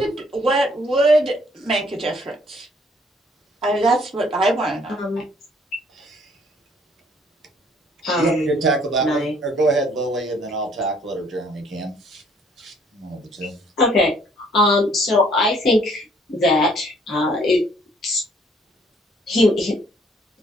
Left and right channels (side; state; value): both; normal; correlation 0.62